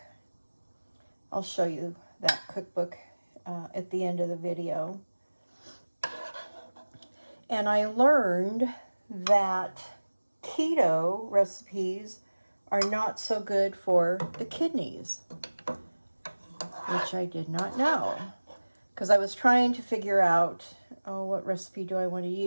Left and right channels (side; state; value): both; inverted; correlation -1.00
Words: I'll show you that cookbook at the end of the video. And I learned that keto recipes are not so good for the kidneys, which I did not know. Because I was trying to figure out, what recipe do I want to